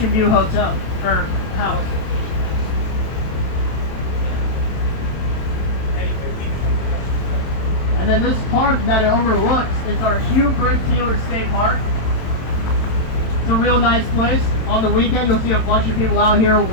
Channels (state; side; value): late; right; 27 ms